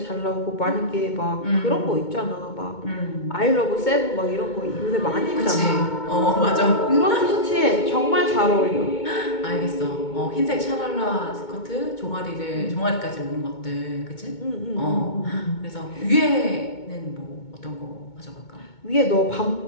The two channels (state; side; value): late; right; 2.2 ms